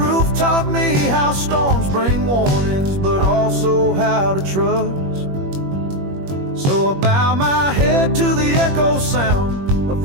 taught me how storms bring warnings, but also how to trust. So I bow my head to the echo sound of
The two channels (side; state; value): left; late; 21 ms